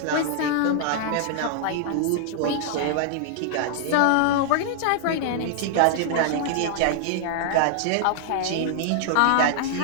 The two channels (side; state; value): both; different; correlation -0.01